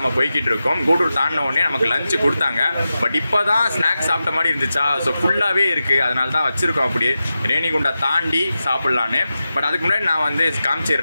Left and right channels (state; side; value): inverted; both; correlation -0.92